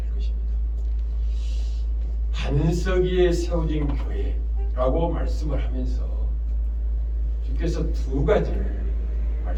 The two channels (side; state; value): both; identical; correlation 1.00